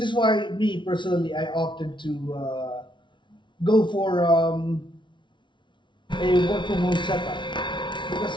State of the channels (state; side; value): late; right; 0.24 ms